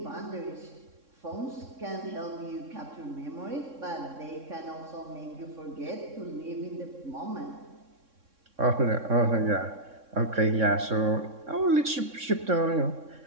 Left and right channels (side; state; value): left; late; 3.6 ms